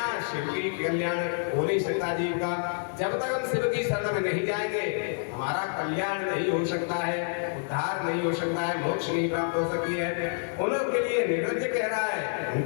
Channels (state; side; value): silent; right; digital silence